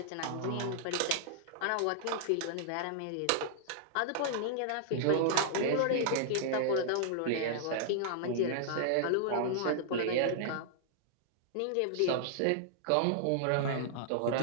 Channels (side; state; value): both; different; correlation -0.01